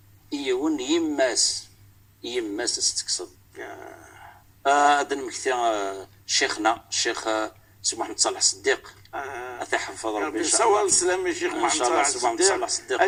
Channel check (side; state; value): both; identical; correlation 1.00